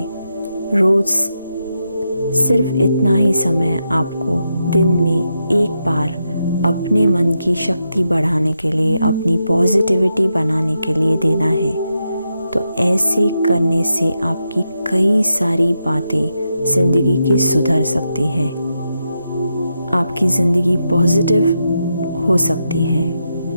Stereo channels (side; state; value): both; inverted; correlation -0.85